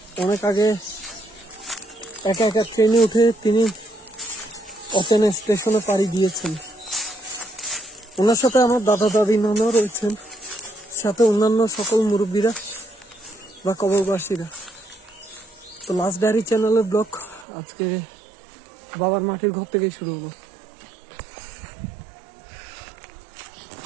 অনেক আগে একা একা ট্রেনে উঠে তিনি অচেনা স্টেশনে পাড়ি দিয়েছেন। ওনার সাথে আমার দাদা দাদি নানাও রয়েছেন, সাথে অন্যান্য সকল মুরব্বীরা বা কবরবাসীরা। তো লাস্ট ডায়েরি চ্যানেলের ব্লগ আজকে বাবার মাটির ঘর থেকেই শুরু হলো।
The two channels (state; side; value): drops out; left; at 17.4 s